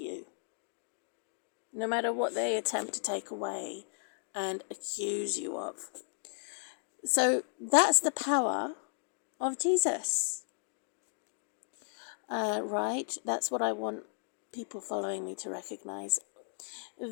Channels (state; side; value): silent; right; digital silence